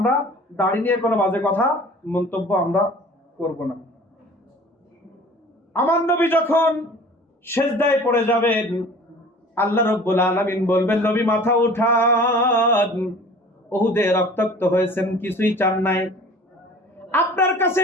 দাড়ি নিয়ে কোনো বাজে কথা মন্তব্য আমরা করব না। আমার নবী যখন সিজদায় পড়ে যাবেন, আল্লাহ রাব্বুল আলামিন বলবেন, নবী মাথা উঠান, উহুদে রক্তাক্ত হয়েছেন, কিছুই চান নাই। আপনার কাছে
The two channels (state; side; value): normal; both; correlation 0.45